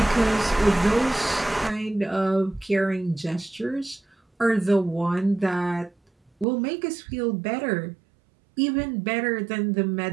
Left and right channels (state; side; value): drops out; left; at 6.5 s